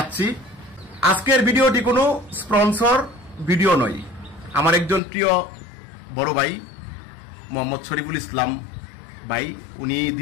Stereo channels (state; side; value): drops out; right; at 5.0 s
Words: আজকের ভিডিওটি কোনো স্পন্সর ভিডিও নয়। আমার একজন প্রিয় বড় ভাই মোহাম্মদ শরীফুল ইসলাম ভাই, উনি